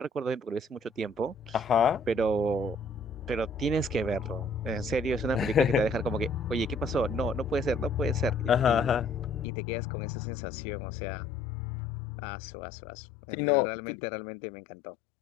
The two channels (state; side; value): drops out; right; at 9.5 s